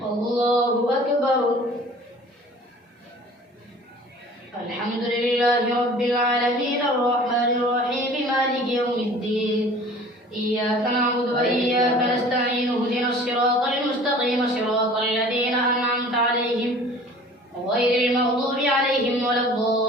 الله أكبر. الحمد لله رب العالمين الرحمن الرحيم مالك يوم الدين. إياك نعبد وإياك نستعين اهدنا الصراط المستقيم صراط الذين أنعمت عليهم غير المغضوب عليهم ولا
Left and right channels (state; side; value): normal; both; correlation 0.46